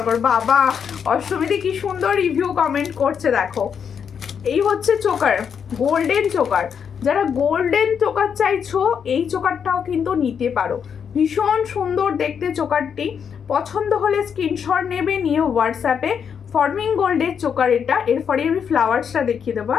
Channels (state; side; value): quieter; right; 7.3 dB